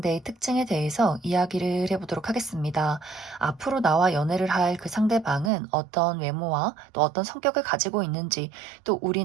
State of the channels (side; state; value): left; drops out; at 5.5 s